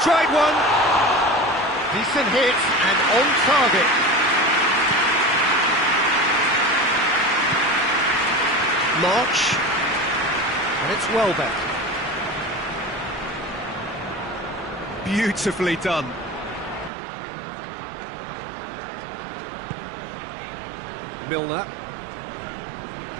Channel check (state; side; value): drops out; left; at 16.9 s